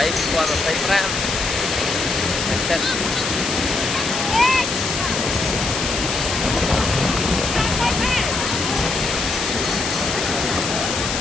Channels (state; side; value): noise; left; hiss, 2 dB below the sound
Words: qua 25 ngày tết